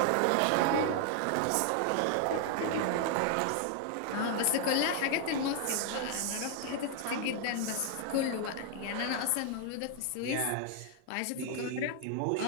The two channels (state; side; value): different; both; correlation 0.00